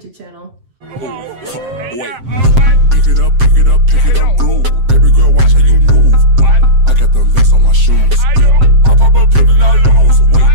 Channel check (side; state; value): left; late; 7.6 ms